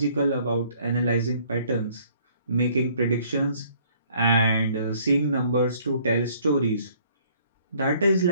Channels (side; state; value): both; inverted; correlation -0.60